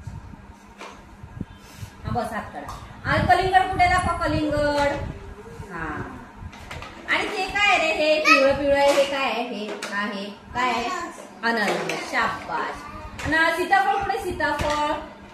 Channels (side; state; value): both; identical; correlation 1.00